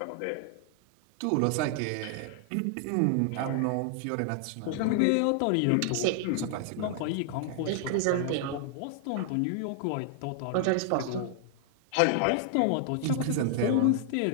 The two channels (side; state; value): both; different; correlation 0.00